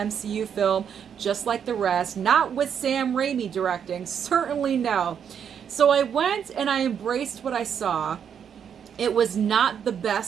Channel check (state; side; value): quieter; left; 8.0 dB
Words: film just like the rest, not with Sam Raimi directing, certainly no. So I went and I embraced what I saw. It was not the